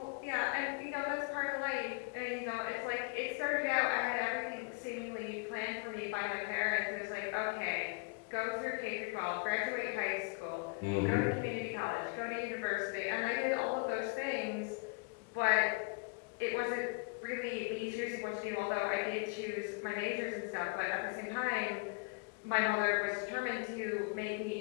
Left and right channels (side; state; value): right; quieter; 31.5 dB